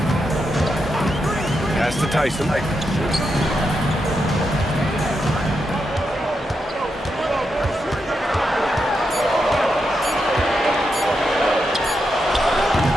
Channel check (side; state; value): both; normal; correlation 0.84